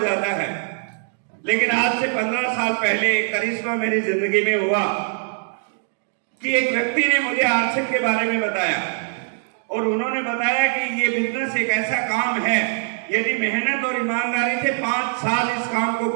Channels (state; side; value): silent; left; digital silence